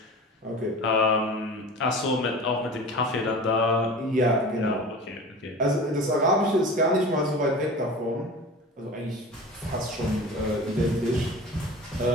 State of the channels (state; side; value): normal; both; correlation 0.36